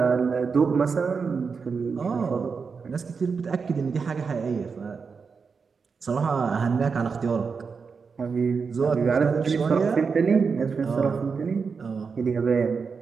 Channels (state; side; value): quieter; left; 5.3 dB